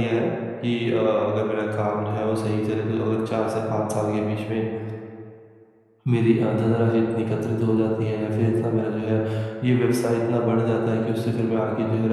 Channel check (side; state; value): both; identical; correlation 1.00